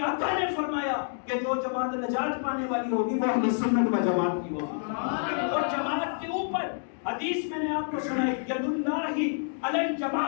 آقا نے فرمایا کہ جو جماعت نجات پانے والی ہوگی وہ اہل سنت و جماعت کی ہوگی، اور جماعت کے اوپر حدیث میں نے آپ کو سنائی ید اللہ علی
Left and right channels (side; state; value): right; silent; digital silence